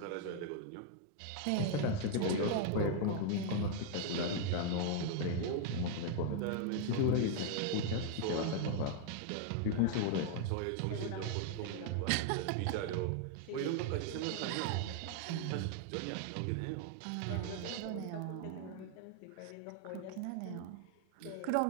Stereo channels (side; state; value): both; different; correlation 0.00